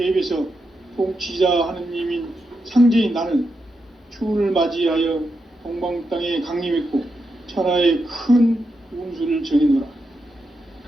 통치자 하느님인 상제인 나는 추운을 맞이하여 동방 땅에 강림했고 천하의 큰 운수를 정해노라.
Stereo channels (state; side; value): normal; both; correlation 0.85